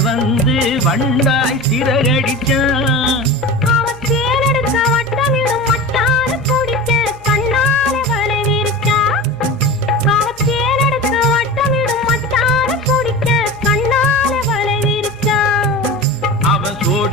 வந்து வண்டாய் சிறகடிச்சான். அவன் தேனெடுக்க வட்டமிடும் மட்டார குடிக்க கண்ணாலே வலை விரிச்சா. அவன் தேனெடுக்க வட்டமிடும் மட்டார குடிக்க கண்ணாலே வலை விரிச்சா. அவன்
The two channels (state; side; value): noise; left; hum, 26 dB below the sound